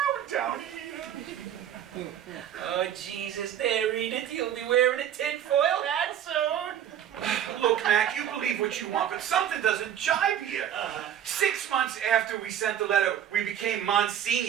down here. Oh, Jesus, there, Edith. You'll be wearing a tinfoil hat soon. Look, Mac, you believe what you want, but something doesn't jive here. 6 months after we sent the letter, we became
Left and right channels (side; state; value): left; quieter; 10.1 dB